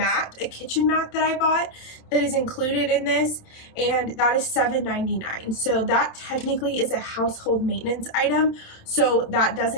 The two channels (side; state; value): right; late; 27 ms